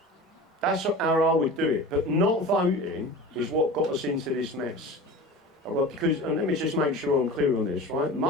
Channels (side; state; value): both; normal; correlation 0.35